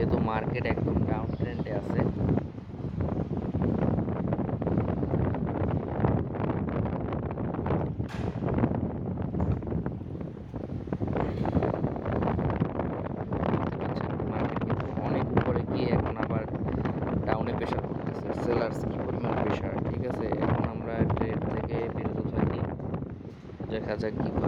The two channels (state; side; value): identical; both; correlation 1.00